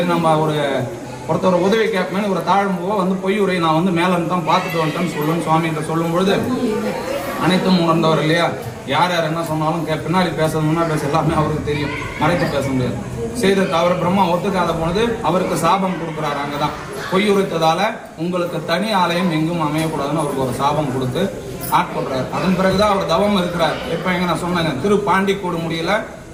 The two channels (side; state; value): both; identical; correlation 1.00